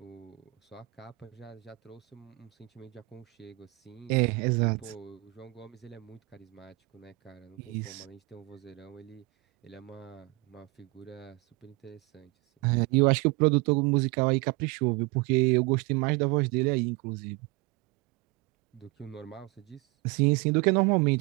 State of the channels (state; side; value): quieter; left; 23.2 dB